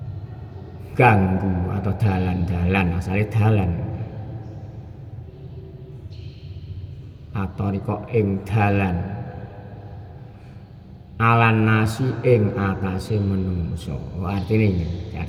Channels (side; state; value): both; identical; correlation 1.00